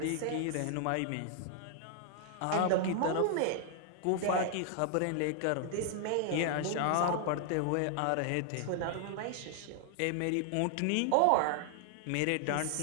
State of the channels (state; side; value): different; both; correlation 0.00